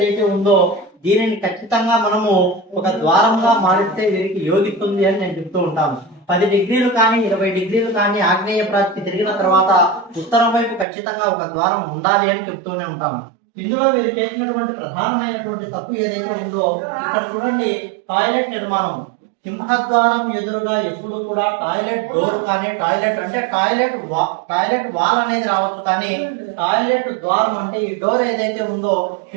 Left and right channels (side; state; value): left; drops out; at 10.9 s